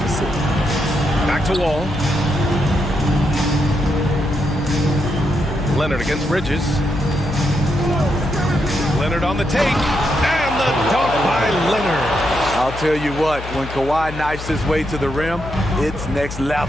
Back to Wall. Leonard against Bridges. Leonard on the take. And the dunk by Leonard. I'll tell you what, when Kawhi knifes his way to the rim, it's next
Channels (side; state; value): left; noise; hum, 10 dB below the sound